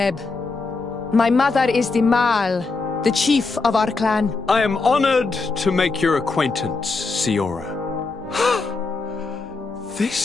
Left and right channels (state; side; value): quieter; right; 3.9 dB